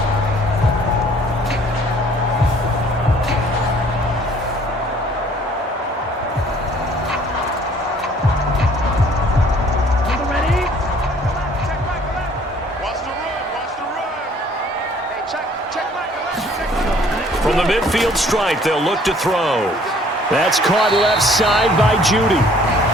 From the midfield stripe, they'll look to throw. That's caught left side by Judy.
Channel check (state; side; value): normal; both; correlation 0.57